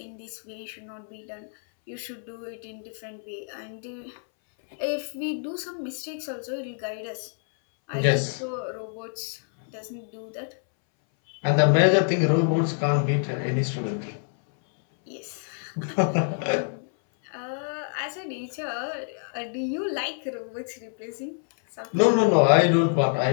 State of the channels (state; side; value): silent; right; 60 dB below the other